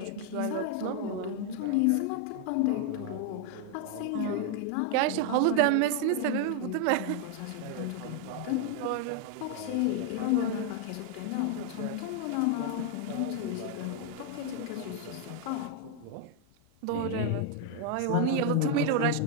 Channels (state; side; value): different; both; correlation 0.00